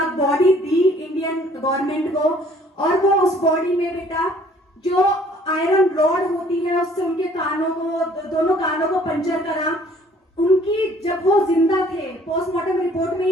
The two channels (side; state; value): both; normal; correlation 0.57